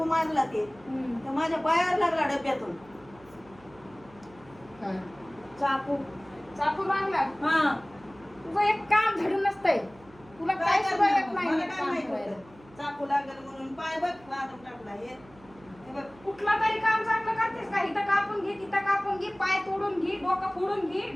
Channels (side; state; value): right; noise; hum, 24 dB below the sound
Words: मारला ते तर माझ्या पायावर लागला डब्यातून चाकू. चाकू लागला. हा तुझं एक काम धडून नसतंय, तुला काय सुद्धा येत नाही मला एक काय काम माहित करायला. होतं चाकू लागेल म्हणून पाय बघ लादून टाकला. हे बघ कुठला तरी काम चांगलं करतेस का? इथं कापून घे, तिथं कापून घे, पाय तोडून घे, डोकं फोडून घे,